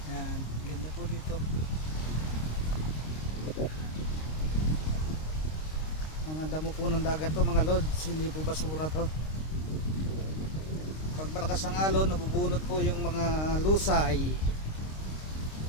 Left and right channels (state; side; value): late; right; 26 ms